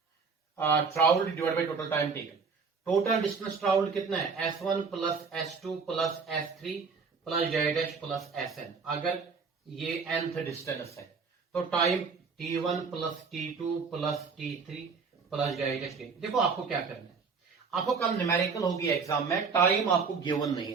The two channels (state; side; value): quieter; left; 5.2 dB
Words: travelled divide by total time taken, total distance travelled कितना है? S1 plus S2 plus S3 plus Z plus SN। अगर ये nth डिस्टेंस है तो time T1 plus T2 plus T3 plus Z। देखो आपको क्या करना है, आपको कल न्यूमेरिकल होगी एग्जाम में, टाइम आपको गिवन नहीं